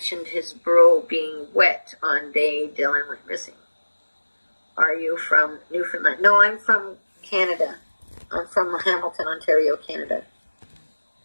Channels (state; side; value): inverted; both; correlation -1.00